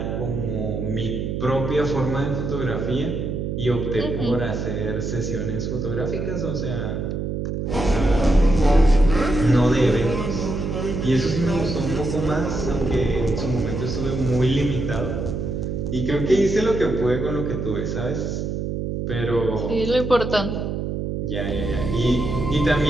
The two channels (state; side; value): noise; right; hum, 3 dB below the sound